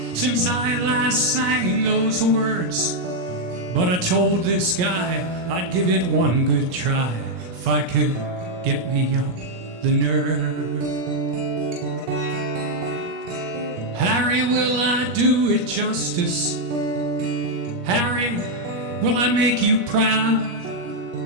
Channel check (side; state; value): left; late; 17 ms